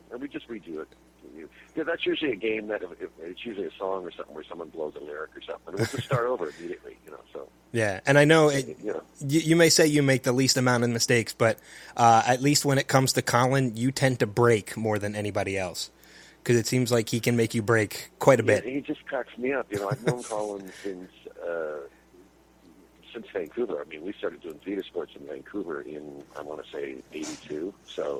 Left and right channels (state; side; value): identical; both; correlation 1.00